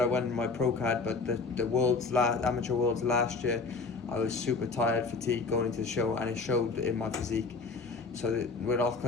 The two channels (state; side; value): quieter; right; 4.1 dB